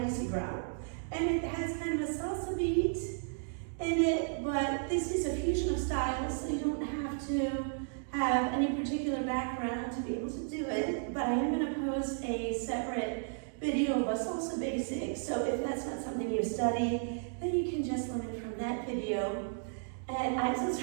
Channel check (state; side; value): silent; left; digital silence